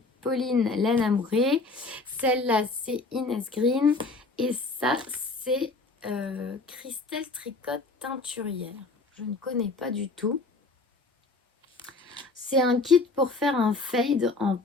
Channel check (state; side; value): quieter; right; 3.5 dB